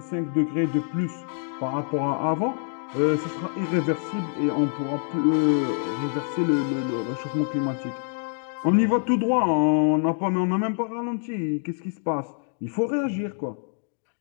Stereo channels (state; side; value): silent; right; 61 dB below the other